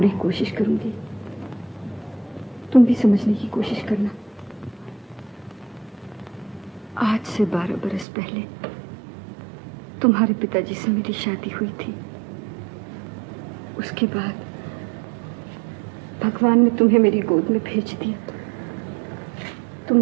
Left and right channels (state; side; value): drops out; left; at 8.1 s